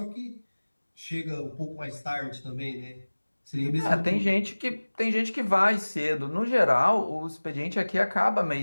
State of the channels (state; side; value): inverted; both; correlation -1.00